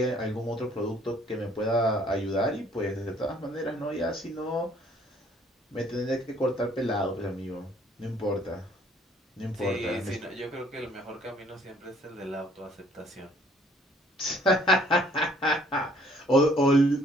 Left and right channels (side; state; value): both; normal; correlation 0.61